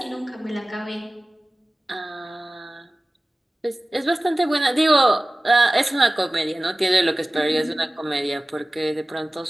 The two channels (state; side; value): normal; both; correlation 0.96